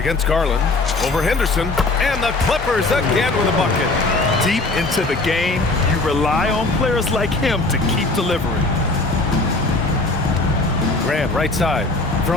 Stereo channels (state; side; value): quieter; right; 3.2 dB